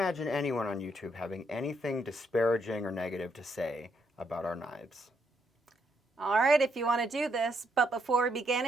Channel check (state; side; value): normal; both; correlation 0.75